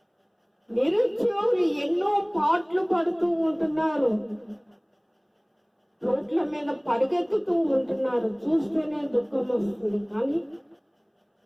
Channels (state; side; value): identical; both; correlation 1.00